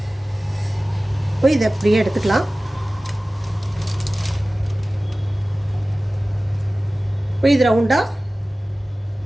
இப்போ இதை அப்படியே எடுத்துக்கலாம். இப்போ இது ரவுண்டாக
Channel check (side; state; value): both; normal; correlation 0.97